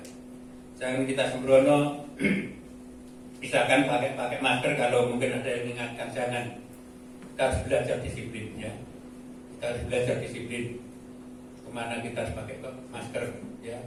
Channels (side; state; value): both; identical; correlation 1.00